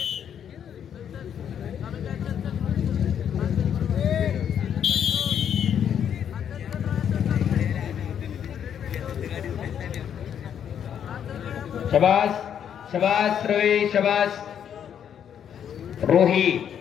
शबास शबास रवी शबास रोहित.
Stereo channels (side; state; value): right; quieter; 8.8 dB